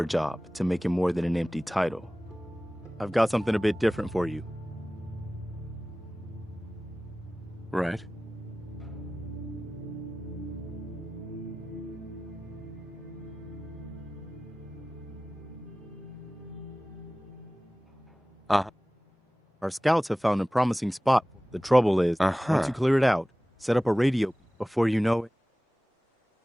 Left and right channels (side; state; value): both; normal; correlation 0.97